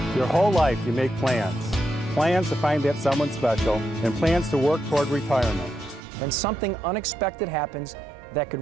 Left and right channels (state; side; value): drops out; left; at 6.0 s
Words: Your whole life you make plans. Plans to find that someone special and plans to work toward retirement. Then something unexpected happens that could